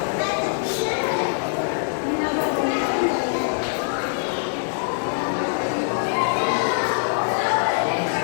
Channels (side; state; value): right; silent; digital silence